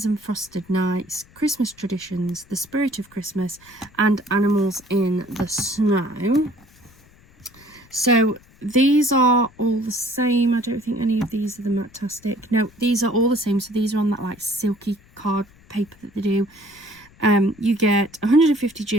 and Frosted Nights, Christmas Traditions, The Spirit of Christmas, and Animals in the Snow. So these are all the same. I don't think any of these are the Matastic. No, these are all the same. So these are on that like silky card paper that they do. You get 150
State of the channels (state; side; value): noise; left; rumble, 27 dB below the sound